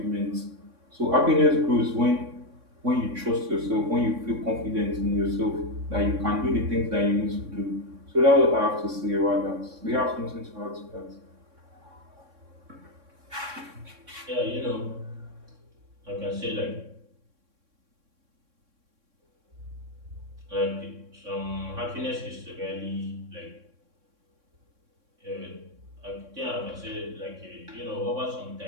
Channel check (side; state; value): left; late; 3.6 ms